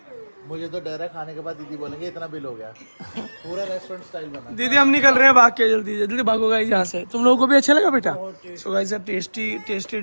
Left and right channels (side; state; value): both; inverted; correlation -1.00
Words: मुझे तो डर है खाने के बाद दीदी बोलेंगे इतना बिल हो गया। पूरा रेस्टोरेंट स्टाइल बना। दीदी हम निकल रहे हैं, भाग के जल्दी जल्दी भागो गाइस यहाँ से। तुम लोगों को भी अच्छा लगा बेटा? सो गाइस टेस्टी